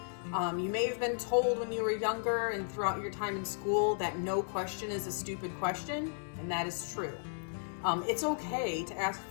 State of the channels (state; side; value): silent; right; 55 dB below the other